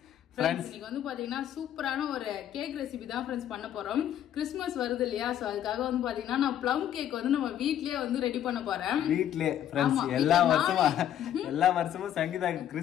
இன்னைக்கு வந்து பாத்தீங்கன்னா சூப்பரான ஒரு கேக் ரெசிபி தான் ஃப்ரெண்ட்ஸ் பண்ண போறோம். கிறிஸ்துமஸ் வருது இல்லையா, சோ அதுக்காக வந்து பாத்தீங்கன்னா நான் ப்ளம் கேக் வந்து நம்ம வீட்லயே வந்து ரெடி பண்ண போறேன். வீட்லயே ஃப்ரெண்ட்ஸ், எல்லா வருஷமும் சங்கீதா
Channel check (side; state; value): right; quieter; 10.8 dB